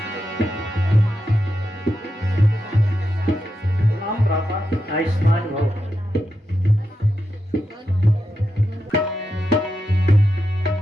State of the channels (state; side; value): normal; both; correlation 0.87